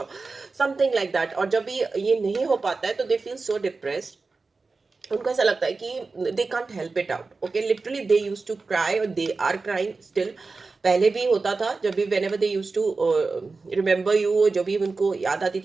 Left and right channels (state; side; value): quieter; left; 4.0 dB